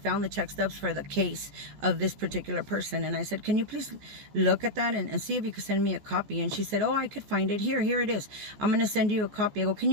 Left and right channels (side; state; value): left; late; 14 ms